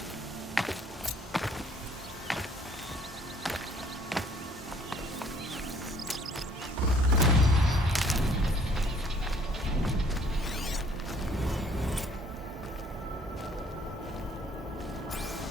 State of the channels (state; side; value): normal; both; correlation 0.59